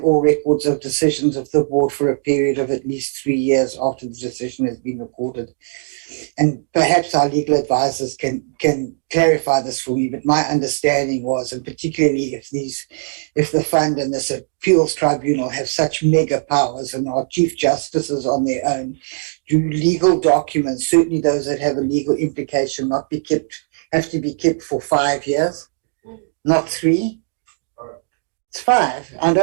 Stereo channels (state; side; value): silent; left; digital silence